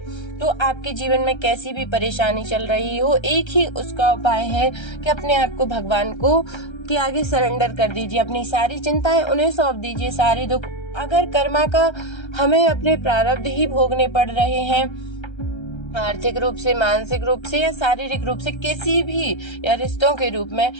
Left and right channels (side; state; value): right; late; 1.3 ms